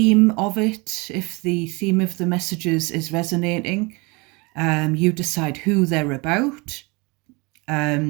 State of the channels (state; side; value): quieter; left; 27.2 dB